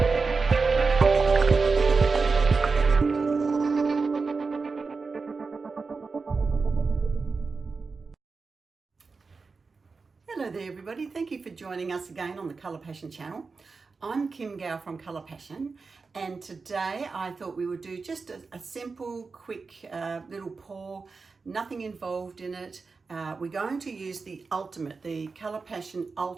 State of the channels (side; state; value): left; quieter; 4.5 dB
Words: there everybody, thank you for joining us again on the Colour Passion channel. I'm Kim Gow from Colour Passion, and today I thought we would do just a simple, quick little pour, nothing involved in it. We're going to use the Colour Passion